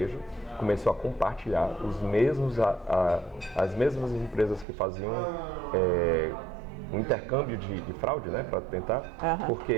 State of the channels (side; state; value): left; drops out; at 4.7 s